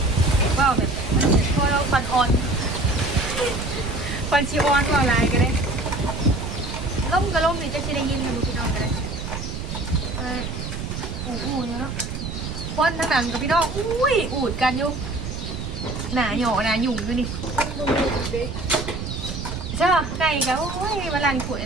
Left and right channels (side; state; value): right; noise; rumble, 6 dB below the sound